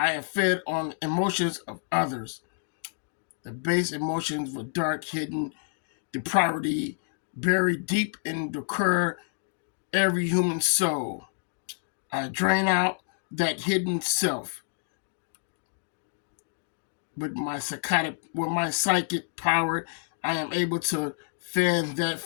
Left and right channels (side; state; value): right; silent; digital silence